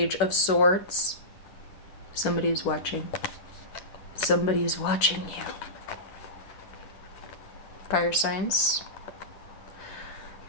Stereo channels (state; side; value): late; right; 10 ms